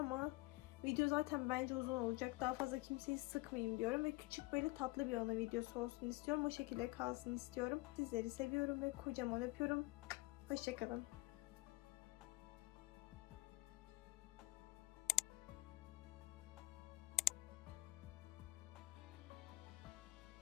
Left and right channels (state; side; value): quieter; right; 20.9 dB